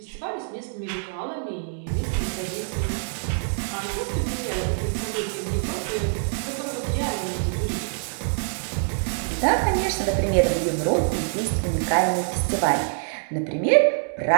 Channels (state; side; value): silent; left; 62 dB below the other